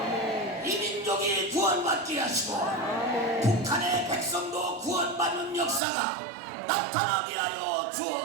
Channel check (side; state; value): left; drops out; at 5.8 s